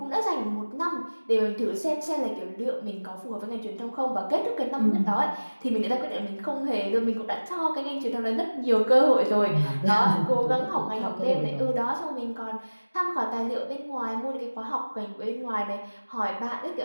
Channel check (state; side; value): inverted; both; correlation -1.00